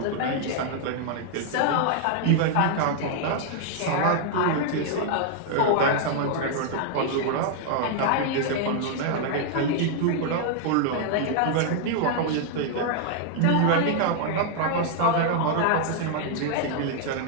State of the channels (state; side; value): different; both; correlation 0.00